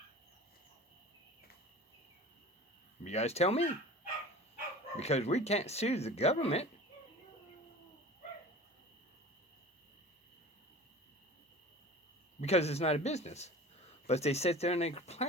You guys tell me. Because we can't sue the government. Because it's not a business. But they sit there and they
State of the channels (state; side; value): normal; both; correlation 0.39